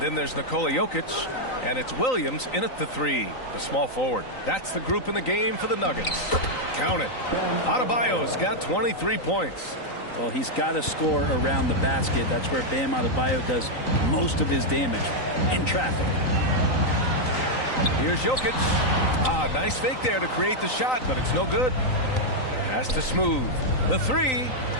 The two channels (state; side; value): late; right; 3.9 ms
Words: there's Nikola Jokic. And it's Williams in at the 3, the small forward. That's the group in the game for the Nuggets. Count it. Adebayo's got 23 points. Well, he's got to score around the basket. That's where Bam Adebayo does most of his damage, in traffic. Here's Jokic. Nice fake there to create the shot, but it's no good. Pass to Smooth. The 3.